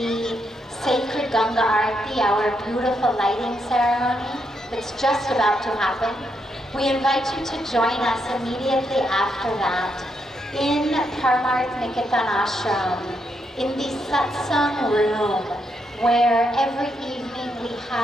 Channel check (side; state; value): both; normal; correlation 0.79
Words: sacred Ganga Aarti, our beautiful lighting ceremony that's just about to happen. We invite you to join us immediately after that in Parmarth Niketan ashram, in the satsang room, where every evening we